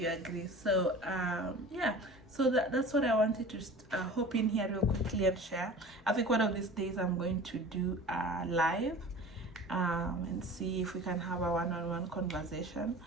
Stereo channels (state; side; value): normal; both; correlation 0.39